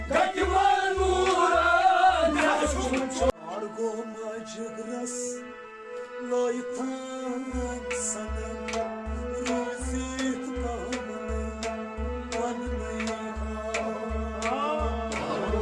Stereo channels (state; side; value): identical; both; correlation 1.00